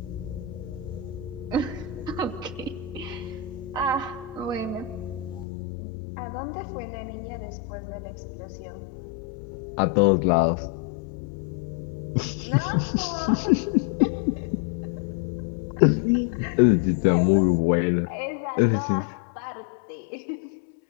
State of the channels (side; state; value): right; drops out; at 5.5 s